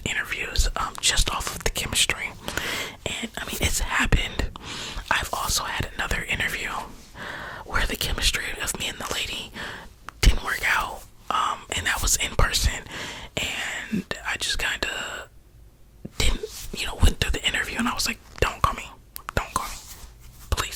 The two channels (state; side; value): identical; both; correlation 1.00